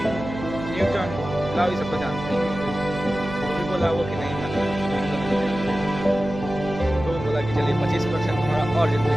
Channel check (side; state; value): right; noise; hum, 9 dB below the sound